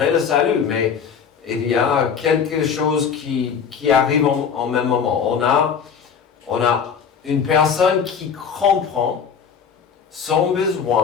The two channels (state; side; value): quieter; right; 6.8 dB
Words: le salut, mais il y a quelque chose qui arrive en même moment. On a une personne qui comprend son